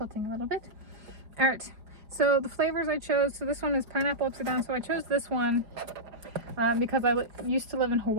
a little bit. All right, so the flavors I chose, so this one is Pineapple Upside-Down. So I chose this one because I used to live in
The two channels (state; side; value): late; left; 5.0 ms